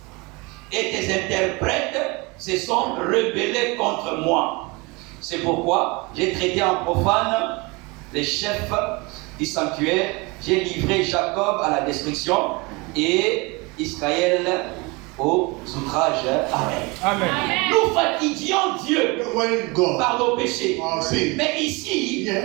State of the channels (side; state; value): left; quieter; 26.4 dB